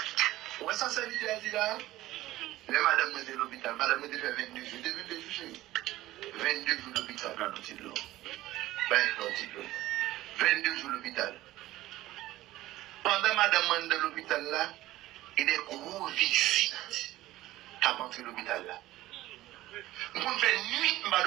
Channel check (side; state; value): left; quieter; 16.2 dB